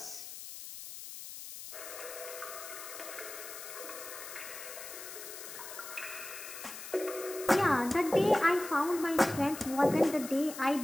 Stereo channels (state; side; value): noise; left; hiss, 11 dB below the sound